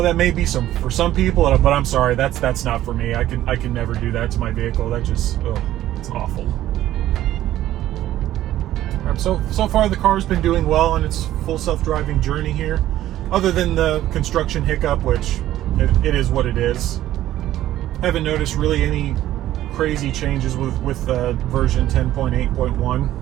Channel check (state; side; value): quieter; left; 13.6 dB